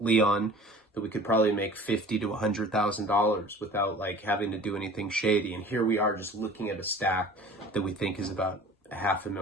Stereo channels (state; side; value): normal; both; correlation 0.44